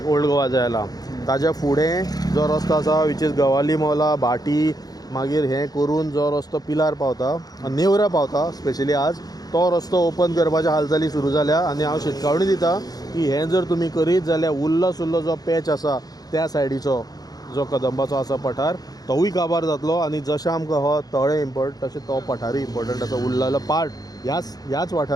ओल्ड गोवा जे आयला, ताज्या फुडें जो रस्तो आसा विच इज गवाली मौला, भाटी, मागीर हें करून जो रस्तो पिलार पावता, नेवरा पावता स्पेशली आज, तो रस्तो ओपन करपाच्या हालचाली सुरू जाल्या. आनी हांव शिटकावणी दिता की हें जर तुमी करीत जाल्यार उरलो सुरलो जो पॅच आसा त्या सायडीचो जो कदंबाचो आसा पठार, तोवूय काबार जातलो. आनी जशें आमकां हो तळें इम्पॉर्टंट तशें तो पठारूय इम्पॉर्टंट आसा. उरलेलो पार्ट ह्याच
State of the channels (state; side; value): late; right; 0.19 ms